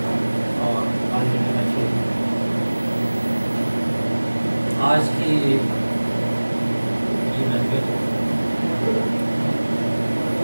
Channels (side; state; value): both; inverted; correlation -1.00